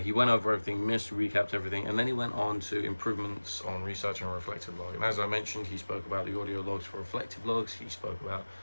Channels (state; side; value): inverted; both; correlation -1.00